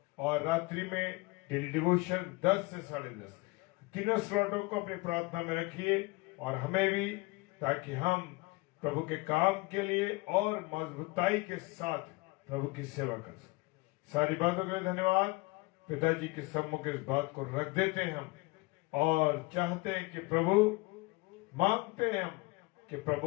और रात्रि में डेली डिवोशन 10 से 10:30। तीनों स्लॉटों को अपनी प्रार्थना में रखिए। और हमें भी, ताकि हम प्रभु के काम के लिए और मजबूताई के साथ प्रभु की सेवा कर सकें। सारी बातों के लिए धन्यवाद। पिताजी के सम्मुख इस बात को रख देते हैं हम, और चाहते हैं कि प्रभु, मांगते हैं हम कि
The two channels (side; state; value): right; quieter; 24.7 dB